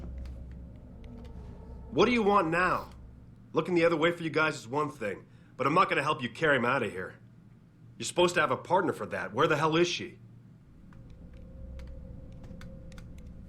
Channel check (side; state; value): both; identical; correlation 1.00